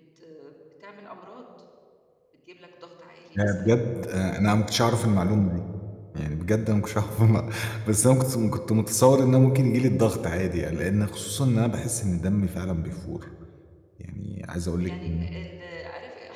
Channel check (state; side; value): identical; both; correlation 1.00